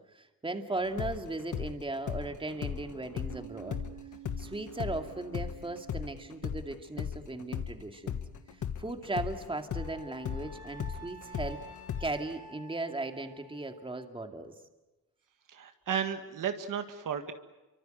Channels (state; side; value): normal; both; correlation 0.41